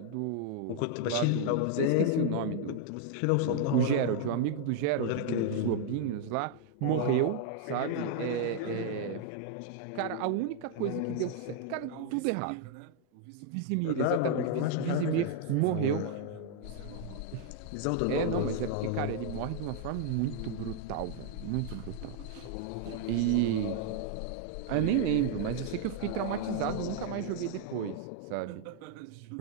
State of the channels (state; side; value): different; both; correlation 0.00